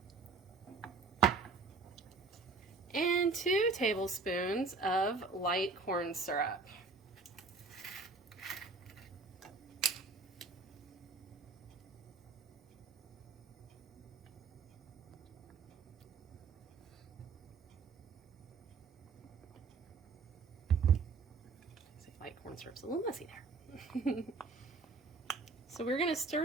and 2 tablespoons of light corn syrup. Light corn syrup's a little messy there. So we're going to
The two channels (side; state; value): left; quieter; 4.2 dB